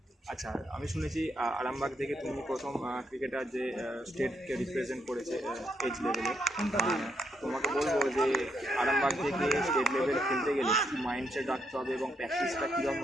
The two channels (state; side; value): normal; both; correlation 0.77